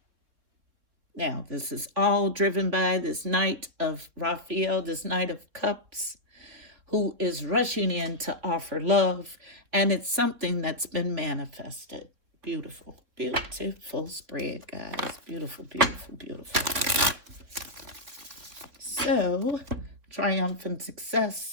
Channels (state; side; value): late; left; 3.5 ms